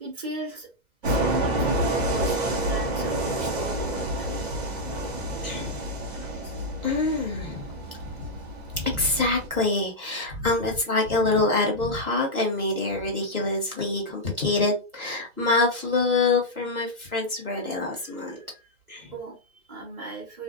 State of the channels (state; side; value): late; left; 2.0 ms